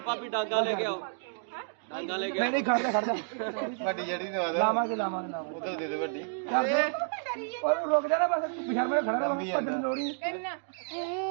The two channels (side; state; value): left; silent; digital silence